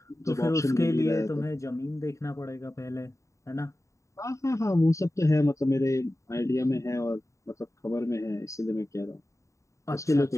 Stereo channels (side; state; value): right; late; 0.15 ms